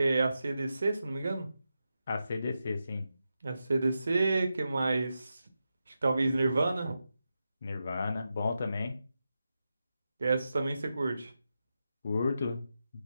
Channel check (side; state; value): both; inverted; correlation -0.89